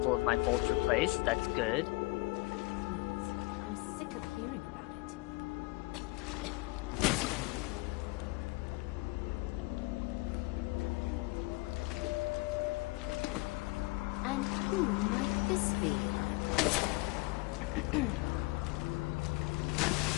of my bolts replaced. That's good. I'm sick of hearing about it. And who might this be?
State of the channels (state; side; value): quieter; right; 24.1 dB